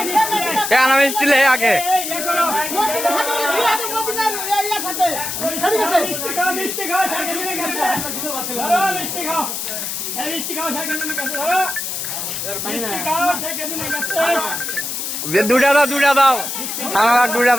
কেন মিষ্টি লে আগে দুটা দাও আমার দুটা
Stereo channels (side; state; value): left; noise; hiss, 4 dB below the sound